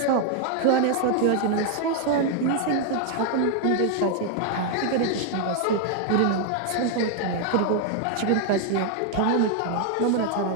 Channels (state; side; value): different; both; correlation 0.00